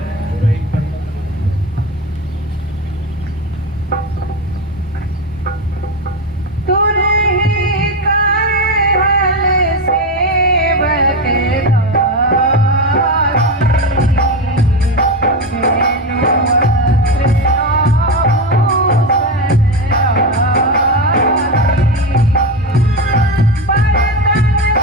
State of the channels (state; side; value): normal; both; correlation 0.15